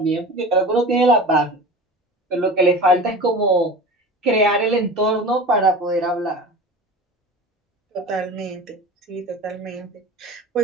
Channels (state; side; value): normal; both; correlation 0.34